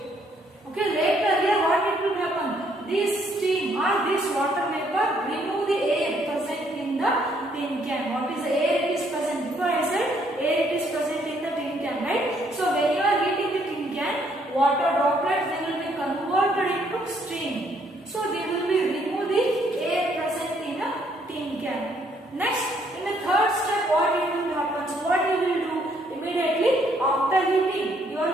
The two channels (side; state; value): both; normal; correlation 0.68